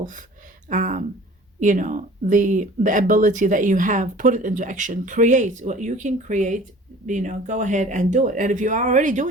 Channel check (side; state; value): both; normal; correlation 0.46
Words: the ability that you have, put it into action. Create what you can create. Go ahead and do it. And if you are already